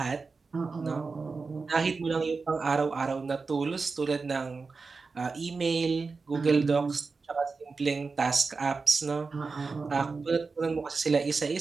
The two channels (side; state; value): left; quieter; 4.4 dB